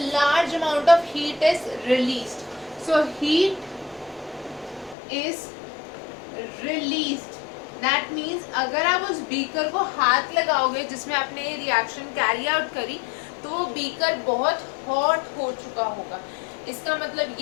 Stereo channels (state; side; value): drops out; right; at 5.0 s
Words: amount of heat is released. So heat is released. That means अगर आप उस बीकर को हाथ लगाओगे जिसमें आपने ये रिएक्शन कैरी आउट करी तो वो बीकर बहुत हॉट हो चुका होगा. इसका मतलब